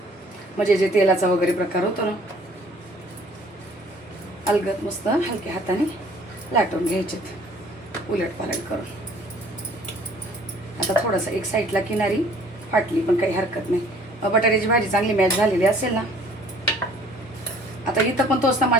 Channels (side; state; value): both; normal; correlation 0.55